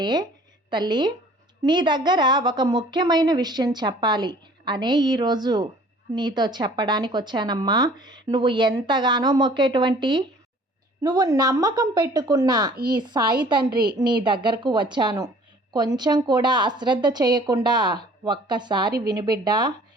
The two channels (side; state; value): both; normal; correlation 0.52